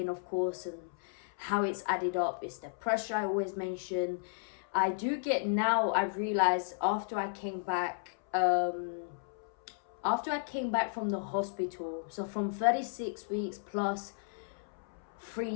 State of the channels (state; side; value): silent; right; 55 dB below the other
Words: of course, and how it's added up. It's the pressure I always mention. I do get now, I've realized after I came back from the hospital, so from 36 weeks plus